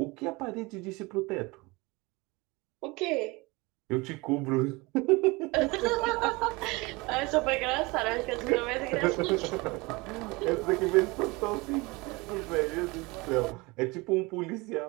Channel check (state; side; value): quieter; left; 24.5 dB